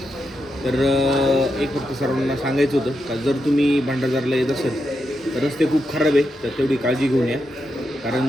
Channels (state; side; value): normal; both; correlation 0.85